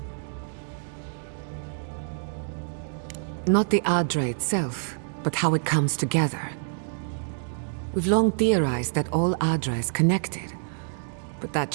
Not the Adra itself, but how it comes together. We've long theorized that all Adra is connected, but that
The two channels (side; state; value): left; silent; digital silence